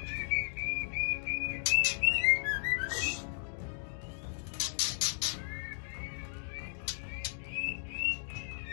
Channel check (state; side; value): silent; right; digital silence